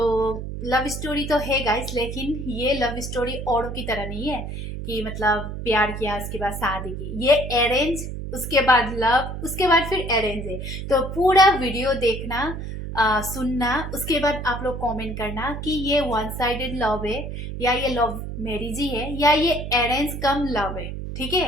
लव स्टोरी तो है गाइस, लेकिन ये लव स्टोरी औरों की तरह नहीं है कि मतलब प्यार किया उसके बाद शादी की। ये अरेंज, उसके बाद लव, उसके बाद फिर अरेंज है। तो पूरा वीडियो देखना, सुनना, उसके बाद आप लोग कमेंट करना कि ये वन साइडेड लव है या ये लव मैरिज ही है या ये अरेंज कम लव है। ठीक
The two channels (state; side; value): noise; right; hum, 7 dB below the sound